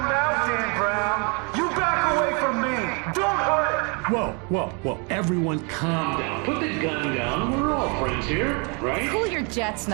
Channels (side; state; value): left; quieter; 33.6 dB